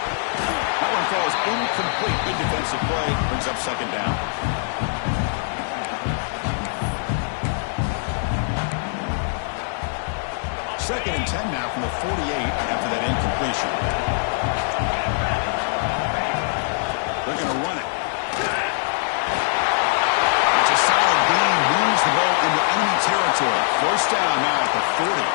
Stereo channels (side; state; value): right; silent; digital silence